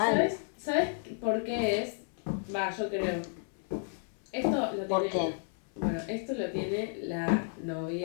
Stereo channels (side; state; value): right; silent; 56 dB below the other